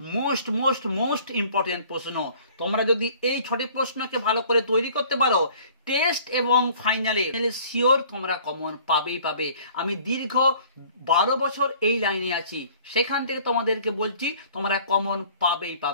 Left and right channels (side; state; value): both; inverted; correlation -0.52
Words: মোস্ট মোস্ট মোস্ট ইম্পর্টেন্ট প্রশ্ন। তোমরা যদি এই 6টি প্রশ্নকে ভালো করে তৈরি করতে পারো, টেস্ট এবং ফাইনালে শিওর তোমরা কমন পাবেই পাবে। আমি দীর্ঘ 12 বছর এই লাইনে আছি, সেখান থেকে তোমাদেরকে বলছি তোমরা কমন পাবেই